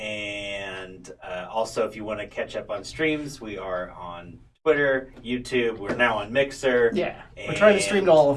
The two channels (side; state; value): both; identical; correlation 1.00